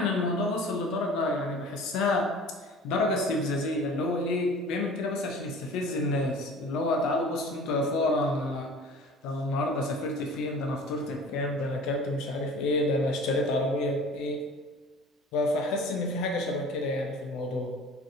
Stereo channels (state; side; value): normal; both; correlation 0.43